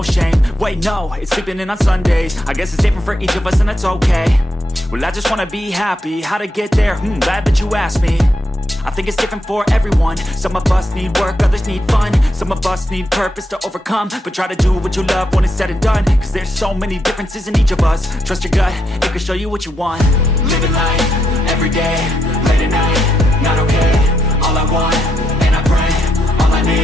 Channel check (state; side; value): normal; both; correlation 0.81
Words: shame. Wait no, it's sleeping in on Sundays. I guess it's different for each of us and that's okay. Well I just wanna be happy, how to get there? Glad that you asked me. I think it's different for everyone. Some of us need work, others need fun. Some of us need purpose to overcome. But try to do what you love when it's said and done. Cause there's so many differences in each of us. Trust your gut, it can show you what you want. Living life, every day, late at night, not okay. All I want, and I pray, all I